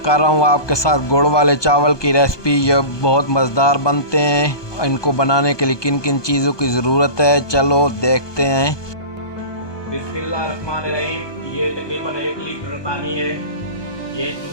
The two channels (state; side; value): late; right; 1.2 ms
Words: कर रहा हूँ आपके साथ गुड़ वाले चावल की रेसिपी। ये बहुत मज़ेदार बनते हैं। इनको बनाने के लिए किन किन चीज़ों की ज़रूरत है, चलो देखते हैं। बिस्मिल्लाहिर्रहमानिर्रहीम। ये तकरीबन 1 लीटर पानी है। ये